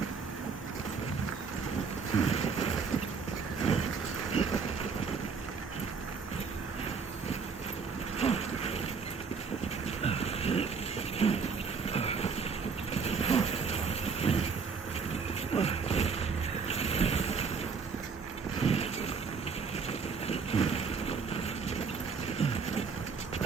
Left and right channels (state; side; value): quieter; left; 5.4 dB